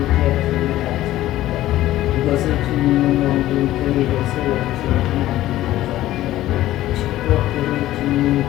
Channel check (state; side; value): quieter; right; 14.7 dB